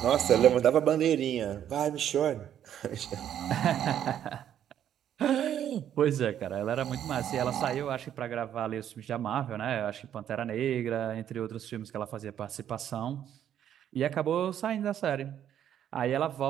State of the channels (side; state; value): left; quieter; 10.2 dB